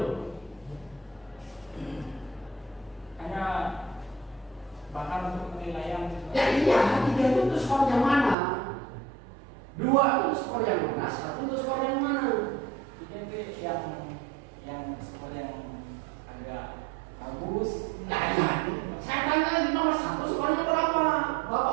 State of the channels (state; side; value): drops out; left; at 8.3 s